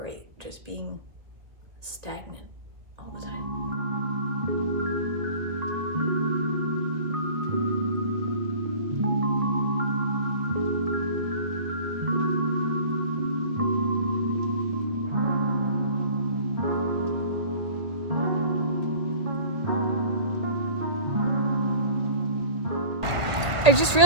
just being stagnant all the time. I just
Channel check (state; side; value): late; left; 1.9 ms